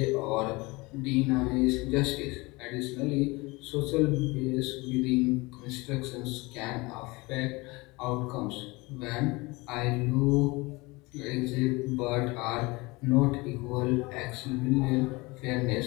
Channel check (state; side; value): quieter; right; 23.9 dB